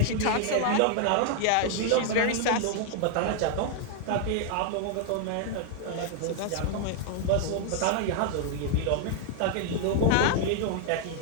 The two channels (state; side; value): different; both; correlation 0.00